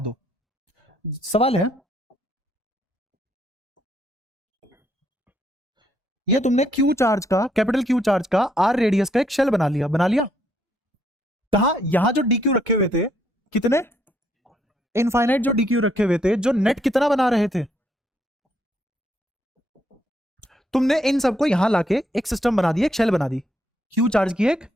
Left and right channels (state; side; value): normal; both; correlation 0.72